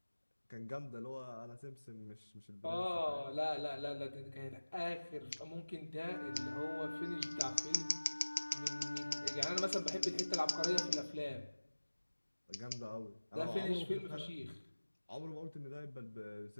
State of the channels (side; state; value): both; inverted; correlation -1.00